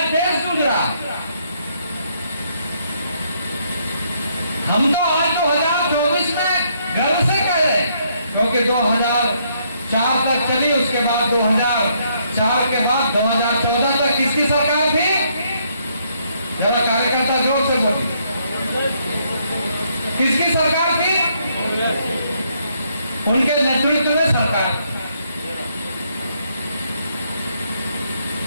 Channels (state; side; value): inverted; both; correlation -0.72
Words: देश जूझ रहा है। हम तो आज 2024 में गर्व से कह रहे हैं क्योंकि 2004 तक चली, उसके बाद 2004 के बाद 2014 तक किसकी सरकार थी? जरा कार्यकर्ता जोर से बोलिए, किसकी सरकार थी? उनके नेतृत्व में सरकार।